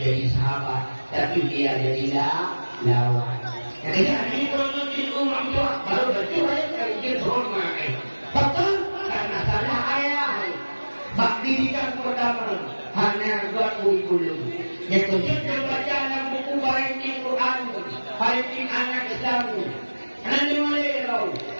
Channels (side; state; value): both; inverted; correlation -1.00